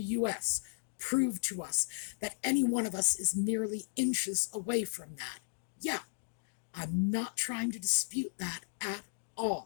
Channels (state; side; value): silent; right; digital silence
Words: US, proved to us that any one of us is merely inches away from that. Yeah, I'm not trying to dispute that at